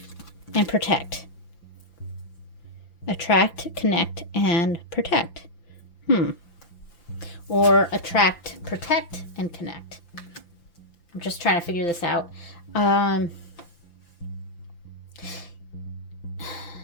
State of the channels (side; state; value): right; late; 5.9 ms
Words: and Protect. Attract, Connect, and Protect. Or Attract, Protect, and Connect. I'm just trying to figure this out.